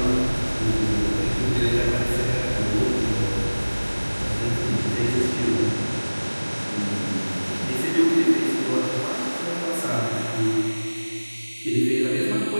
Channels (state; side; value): inverted; both; correlation -1.00